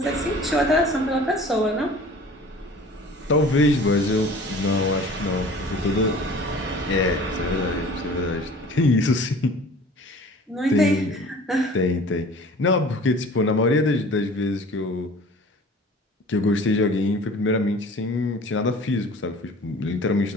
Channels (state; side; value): normal; both; correlation 0.45